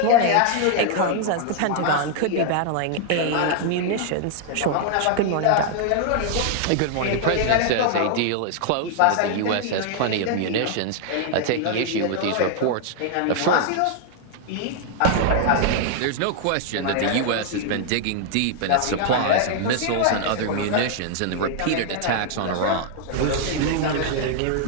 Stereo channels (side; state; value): both; different; correlation 0.00